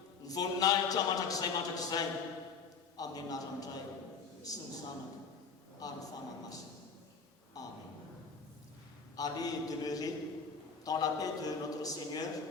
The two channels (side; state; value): right; quieter; 5.3 dB